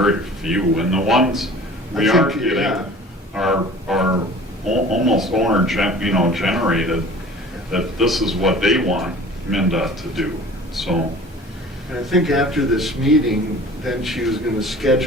few, and the ones we I are think, getting yeah. are almost generated, that this is what they want MnDOT to do, so. And I think after this meeting, then she was gonna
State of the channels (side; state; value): both; normal; correlation 0.44